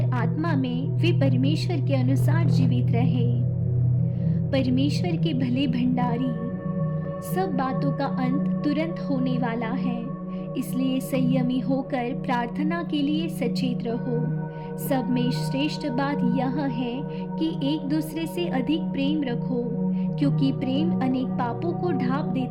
आत्मा में वे परमेश्वर के अनुसार जीवित रहे। परमेश्वर के भले भंडारी। सब बातों का अंत तुरंत होने वाला है, इसलिए संयमी होकर प्रार्थना के लिए सचेत रहो। सब में श्रेष्ठ बात यह है कि एक दूसरे से अधिक प्रेम रखो, क्योंकि प्रेम अनेक पापों को ढांप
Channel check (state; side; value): identical; both; correlation 1.00